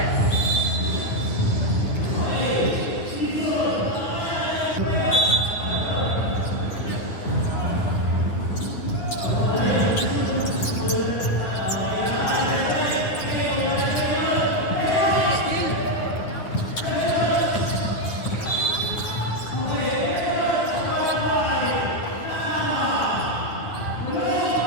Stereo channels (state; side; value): late; right; 9.7 ms